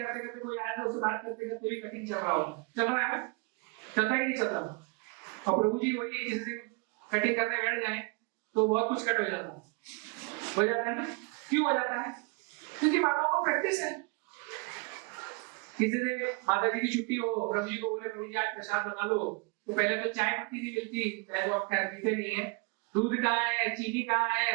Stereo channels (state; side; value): quieter; left; 31.6 dB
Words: करते कोई आया तो उससे बात करते करते भी कटिंग चल रहा होगा, चल रहा है ना, चलता ही नहीं चल रहा। और प्रभु जी वही किसी से कटिंग करने बैठ जाए तो बहुत कुछ कट हो जाता है। हो जाता है ना? क्यों हो जाता है? क्योंकि माताओं को प्रैक्टिस है। किसी दिन माता जी की छुट्टी हो, प्रभु जी को बोले प्रभु जी आज प्रसाद बना लो, तो पहले तो चाय पत्ती नहीं मिलती, चाहे तो आप खैर पीते नहीं है, दूध कहाँ है, चीनी कहाँ